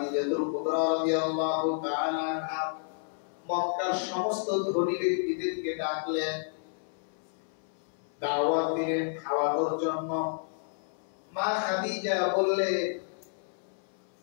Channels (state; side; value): silent; right; 57 dB below the other